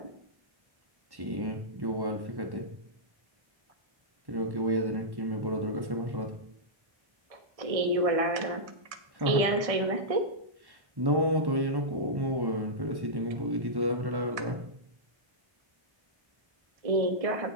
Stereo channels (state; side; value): late; left; 1.6 ms